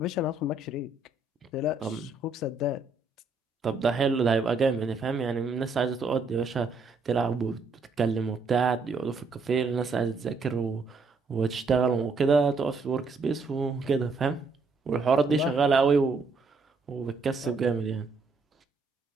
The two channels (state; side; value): quieter; left; 3.8 dB